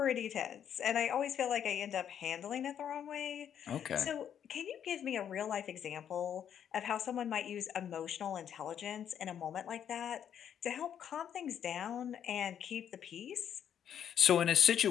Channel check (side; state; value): right; quieter; 9.1 dB